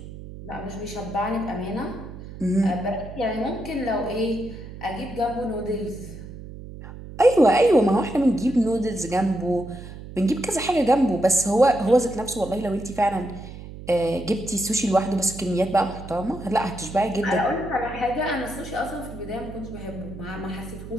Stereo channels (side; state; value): right; noise; hum, 13 dB below the sound